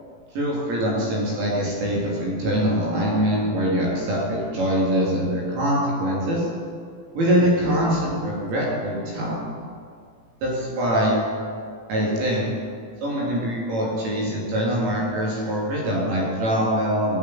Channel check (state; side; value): late; left; 18 ms